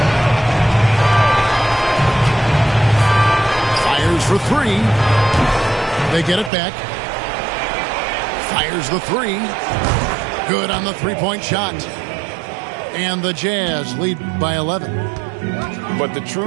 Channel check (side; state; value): left; drops out; at 6.5 s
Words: Fires for three. They get it back. Fires the three. Good on the three-point shot. And the Jazz lead by 11. But the